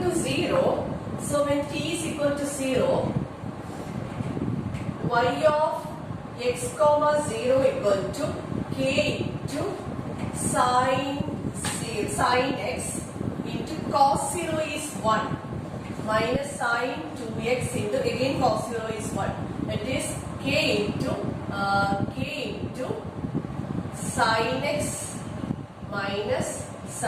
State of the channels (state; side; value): identical; both; correlation 1.00